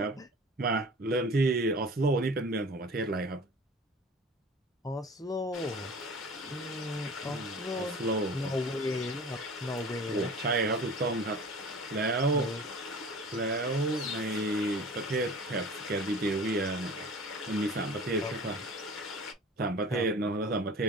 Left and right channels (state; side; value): normal; both; correlation 0.41